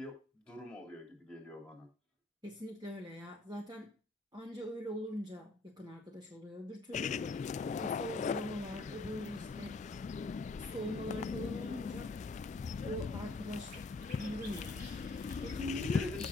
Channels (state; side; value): quieter; right; 3.3 dB